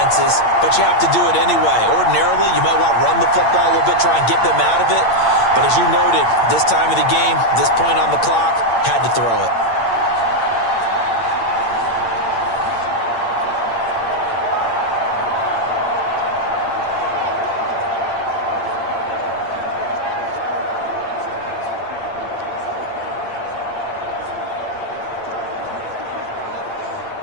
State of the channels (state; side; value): late; right; 8.7 ms